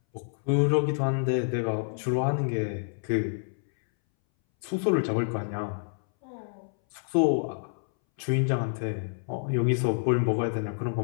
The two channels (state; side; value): silent; right; 59 dB below the other